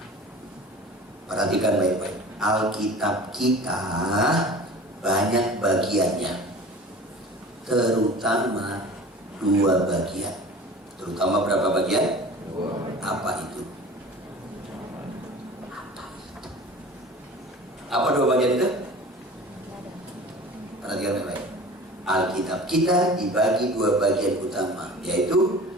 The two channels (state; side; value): normal; both; correlation 0.40